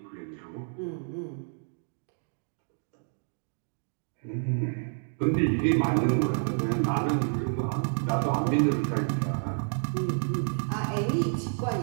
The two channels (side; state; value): left; silent; 58 dB below the other